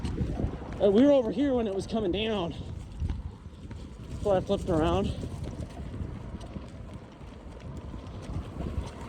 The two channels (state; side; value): identical; both; correlation 1.00